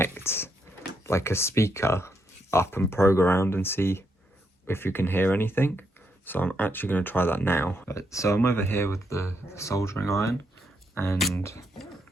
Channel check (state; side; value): normal; both; correlation 0.78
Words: like a speaker up and probe around and see if you can hear anything. So I'm actually going to try that now. So I'm over here with the soldering iron. And